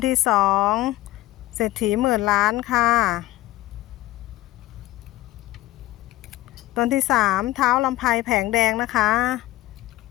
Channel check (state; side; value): quieter; right; 16.6 dB